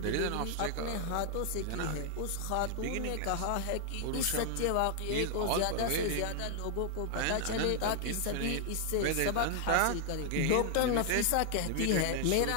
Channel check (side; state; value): both; different; correlation 0.00